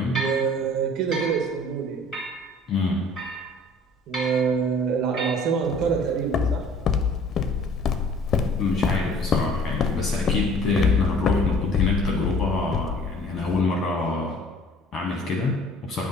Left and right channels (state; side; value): normal; both; correlation 0.51